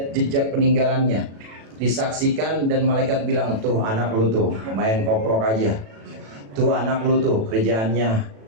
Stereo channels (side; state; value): left; late; 36 ms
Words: jejak peninggalannya, disaksikan dan malaikat bilang, tuh anak lu tuh main koprok aja, tuh anak lu tuh kerjaannya